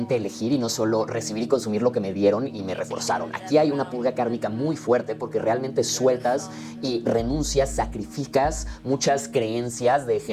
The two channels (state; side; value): identical; both; correlation 1.00